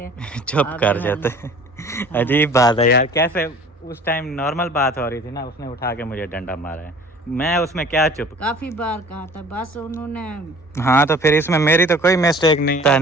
चुप कर जाते हैं। हाँ। अजीब बात है यार, कैसे उस टाइम नॉर्मल बात हो रही थी ना, उसने उठा के मुझे डंडा मारा है, मैं उसमें क्या चुप। काफ़ी बार कहा था, बस उन्होंने। हाँ तो फिर इसमें मेरी तो कोई मिस्टेक नहीं था,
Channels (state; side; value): normal; both; correlation 0.48